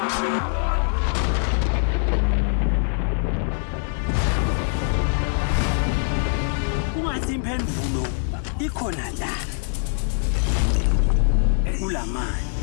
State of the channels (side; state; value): right; silent; 63 dB below the other